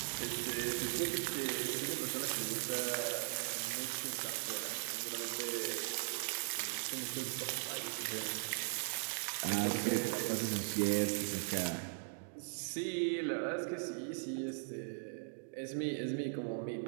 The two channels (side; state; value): left; silent; digital silence